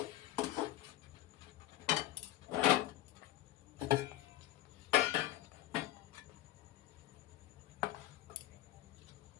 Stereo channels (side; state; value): right; quieter; 14.9 dB